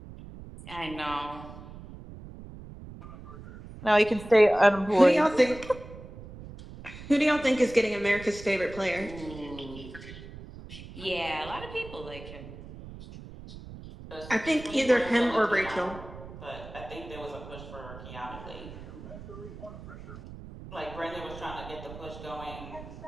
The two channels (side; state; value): right; noise; rumble, 14 dB below the sound